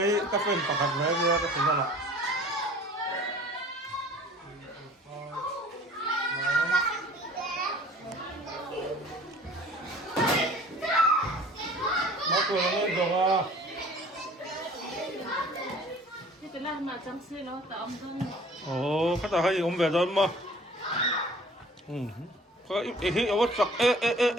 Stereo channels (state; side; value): normal; both; correlation 0.49